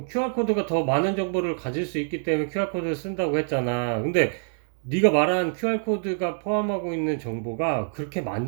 더 많은 정보를 가질 수 있기 때문에 QR코드를 쓴다고 했잖아. 근데 네가 말한 QR코드가 포함하고 있는 정보가 그렇게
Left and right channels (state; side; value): silent; left; 61 dB below the other